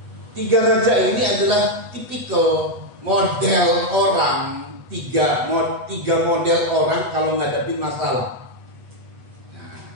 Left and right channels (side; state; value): left; late; 8.2 ms